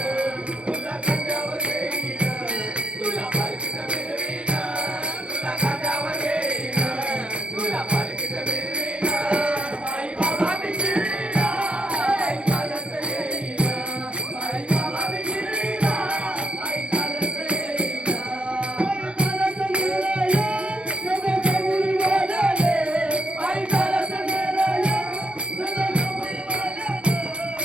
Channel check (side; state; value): left; late; 0.058 ms